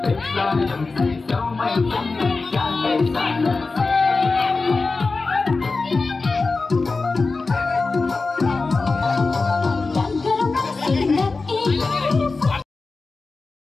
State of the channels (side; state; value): right; quieter; 3.9 dB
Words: xa đầm say dấu mây cũng ngàn cây xa